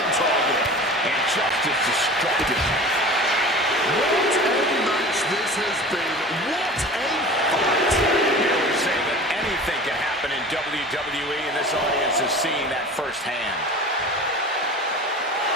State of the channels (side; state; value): both; normal; correlation 0.38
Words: target. And just as destructive. What a match this has been. What a fight. Here we say that anything can happen in WWE, and this audience is seeing that firsthand.